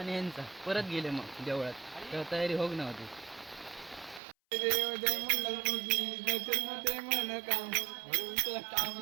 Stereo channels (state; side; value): drops out; left; at 4.2 s